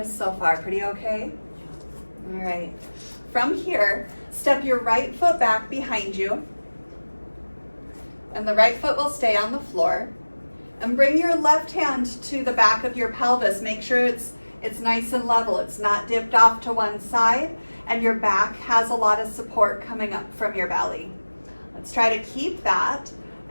so far? Pretty okay? All right. From here, step your right foot back behind you, and the right foot will stay on the floor. And bring your left hand to the back of your pelvis. Make sure it's nice and level. It's not dipped off to one side, and your back has a lot of support coming up from your belly. Let's try to keep that.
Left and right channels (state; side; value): inverted; both; correlation -1.00